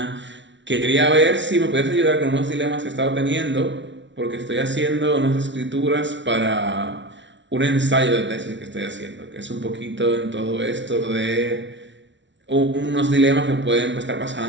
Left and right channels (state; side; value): late; left; 0.54 ms